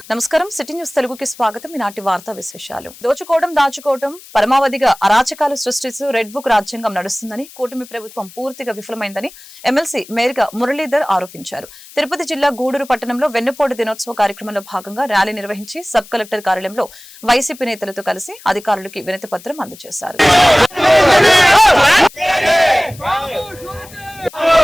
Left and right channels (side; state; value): left; noise; hiss, 20 dB below the sound